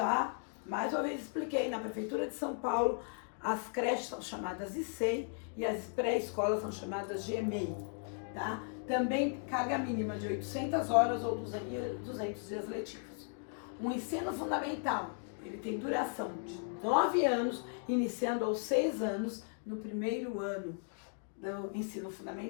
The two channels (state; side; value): silent; right; 54 dB below the other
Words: mais uma vez expliquei, na Prefeitura de São Paulo, as creches são chamadas ICEI e as pré-escolas são chamadas de EMEI, tá? Também carga mínima de 800 horas ou 200 dias letivos. O ensino fundamental, ele tem duração de 9 anos, iniciando aos 6 anos no primeiro ano do ensino